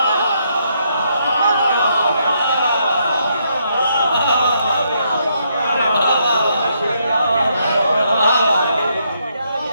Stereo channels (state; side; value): inverted; both; correlation -0.75